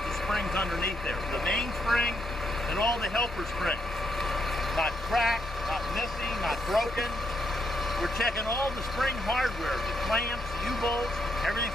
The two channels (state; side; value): normal; both; correlation 0.77